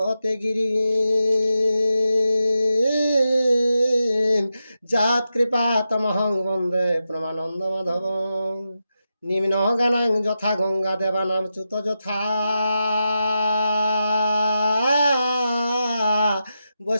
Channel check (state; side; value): inverted; both; correlation -0.88